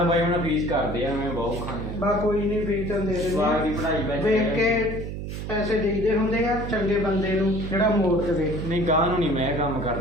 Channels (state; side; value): noise; right; hum, 6 dB below the sound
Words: ਬਾਈ, ਹੁਣ ਫੀਸ ਕਰਦੇ ਆ, ਮੈਂ ਬਹੁਤ ਖਾਂਦੇ ਬਾ ਕੋਈ ਨਹੀਂ, ਫੀਸ ਤਾਂ ਦੇ ਜਵਾਬ ਦੀ ਦਿੰਦੇ ਪੜ੍ਹਾਈ ਵੇਖ ਕੇ ਪੈਸੇ ਦੇਈਦੇ ਹੁੰਦੇ ਆ ਚੰਗੇ ਬੰਦੇ ਨੂੰ ਜਿਹੜਾ ਮੋੜ ਦੇਵੇ। ਨਹੀਂ ਗਾਂ ਨੂੰ ਨਹੀਂ ਮੈਂ ਕੰਮ